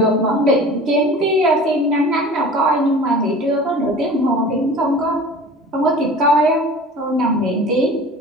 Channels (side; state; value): both; normal; correlation 0.41